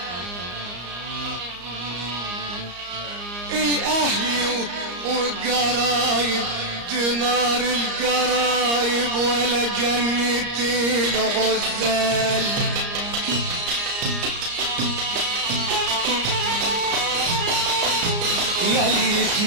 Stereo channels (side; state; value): left; late; 34 ms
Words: الاهل والقرايب، دينار القرايب ولا جنة الغزال. ياللي